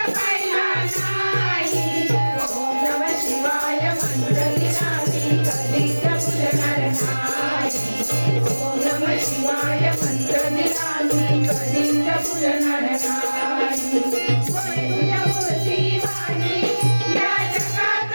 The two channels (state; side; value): inverted; both; correlation -1.00